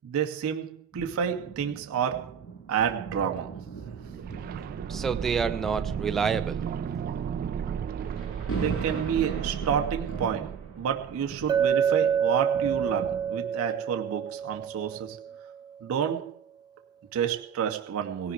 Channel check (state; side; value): quieter; left; 7.5 dB